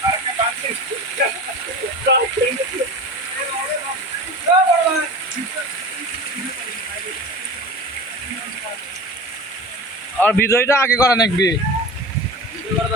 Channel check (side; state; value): both; normal; correlation 0.34